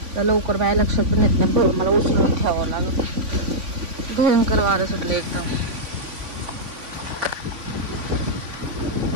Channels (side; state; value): left; late; 3.5 ms